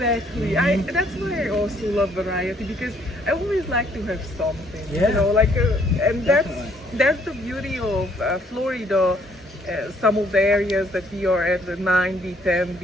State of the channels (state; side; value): normal; both; correlation 0.65